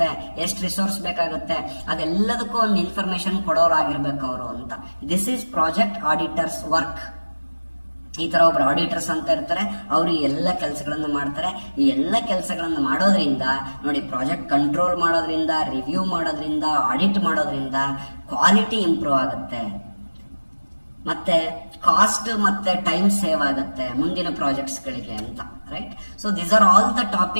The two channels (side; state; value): both; inverted; correlation -1.00